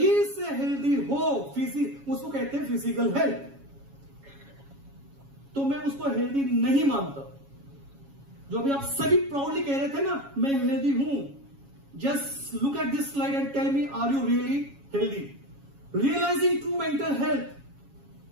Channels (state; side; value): late; left; 7.2 ms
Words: से हेल्दी हो, उसको कहते हैं फिजिकल हेल्थ, तो मैं उसको हेल्दी नहीं मानता। जो अभी आप सभी प्राउडली कह रहे थे ना, मैं हेल्दी हूं, just look at this slide and tell me, are you really healthy? Realizing true mental health,